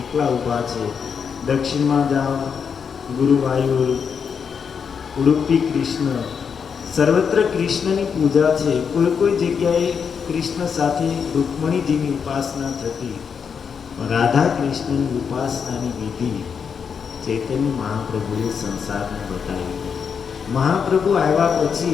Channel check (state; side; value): quieter; right; 6.6 dB